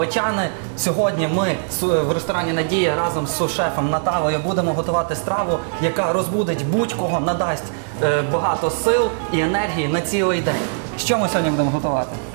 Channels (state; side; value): silent; left; digital silence